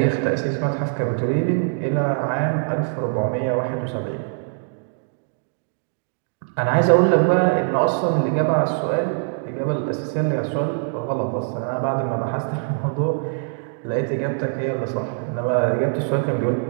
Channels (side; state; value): left; silent; digital silence